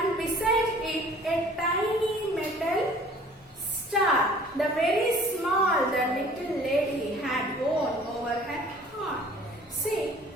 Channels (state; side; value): normal; both; correlation 0.51